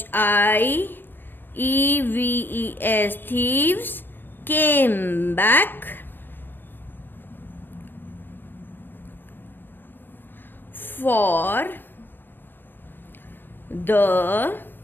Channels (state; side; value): late; right; 0.095 ms